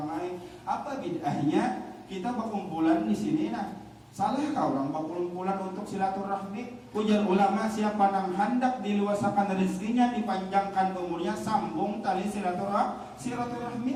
lain apa bid'ahnya kita berkumpulan di sini nah salah kau orang berkumpulan untuk silaturahmi. Ujar ulama siapa yang hendak diluasakan rezekinya dipanjangkan umurnya sambung tali silaturahmi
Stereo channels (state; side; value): identical; both; correlation 1.00